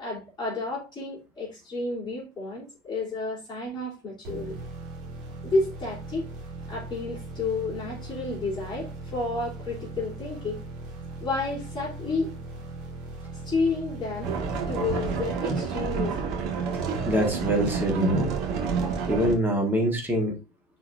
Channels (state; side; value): normal; both; correlation 0.46